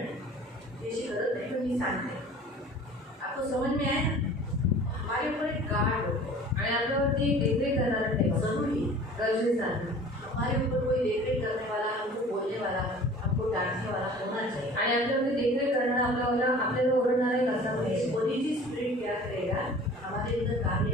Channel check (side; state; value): both; normal; correlation 0.45